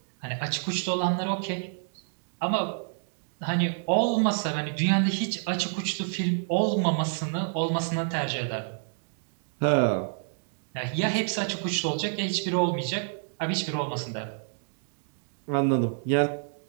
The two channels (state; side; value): silent; left; digital silence